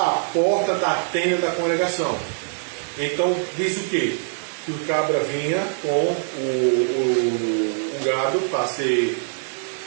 porta da tenda da congregação. Então, diz o quê? Que o cabra vinha com o gado para ser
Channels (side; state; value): left; silent; digital silence